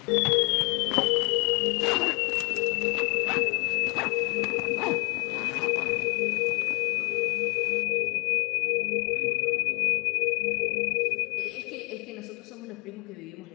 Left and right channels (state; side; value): quieter; right; 29.8 dB